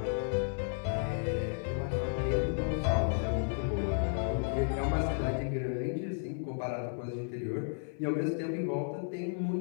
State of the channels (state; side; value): silent; right; 56 dB below the other